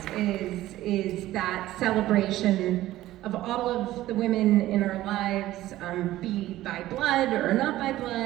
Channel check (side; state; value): left; quieter; 15.3 dB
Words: is that celebration of all of the women in our lives, be by blood or not by